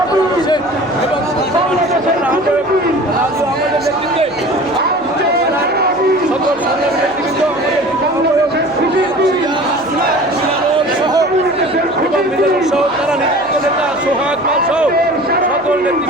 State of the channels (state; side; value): noise; left; hum, 26 dB below the sound